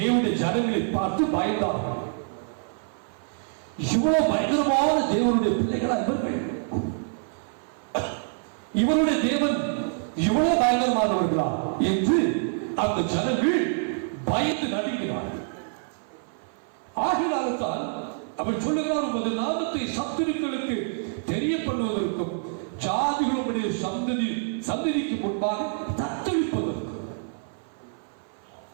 ஜனங்களை பார்த்து பயந்தார்கள். இவ்வளவு பயங்கரமான தேவனுடைய பிள்ளைகளா இவர்கள்? இவருடைய தேவன் இவ்வளவு பயங்கரமானவர்களா என்று அந்த ஜனங்கள் பயந்து நடுங்கினார்கள். ஆகினால்தான் அவர் சொல்லுகிறார், உமது நாமத்தை சத்துருக்களுக்கு தெரியப்படுவதற்கும் ஜாதிகளுடைய சந்ததிக்கு முன்பாக தத்தளிப்பதற்கும்.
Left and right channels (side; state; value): left; silent; 55 dB below the other